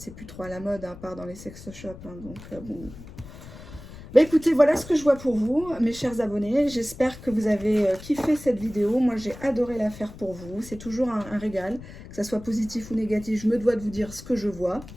plus trop à la mode, hein, à part dans les sex shops. Hein, donc, bon... Bah écoutez, voilà ce que je vois pour vous, mes chers abonnés. J'espère que vous avez kiffé cette vidéo. Moi, j'ai adoré la faire pour vous. C'est toujours un régal, que ça soit positif ou négatif. Je me dois de vous dire ce que je vois.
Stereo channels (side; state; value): left; noise; rumble, 15 dB below the sound